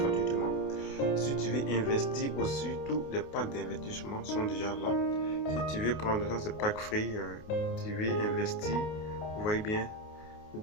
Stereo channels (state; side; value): late; right; 28 ms